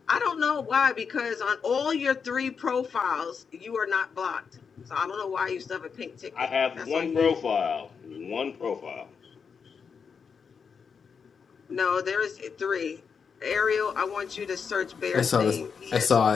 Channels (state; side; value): quieter; right; 6.1 dB